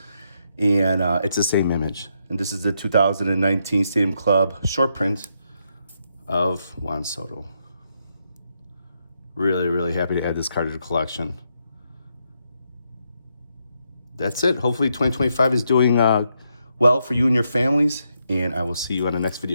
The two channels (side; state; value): both; inverted; correlation -0.79